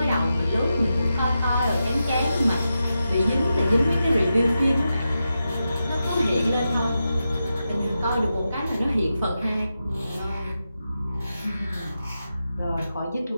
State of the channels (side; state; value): both; inverted; correlation -0.89